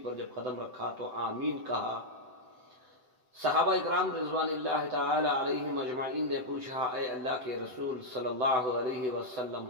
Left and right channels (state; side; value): late; left; 7.9 ms